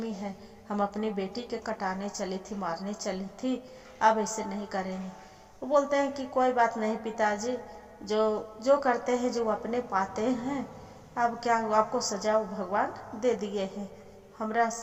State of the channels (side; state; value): both; identical; correlation 1.00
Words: है, हम अपनी बेटी के कटाने चली थी, मारने चली थी, अब ऐसे नहीं करेंगे। वो बोलते हैं कि कोई बात नहीं पिताजी, जो जो करते हैं जो अपने पाते हैं, अब क्या आपको सजा भगवान दे दिए हैं, हमरा